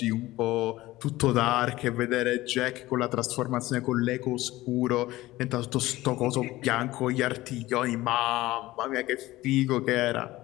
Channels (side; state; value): right; quieter; 17.7 dB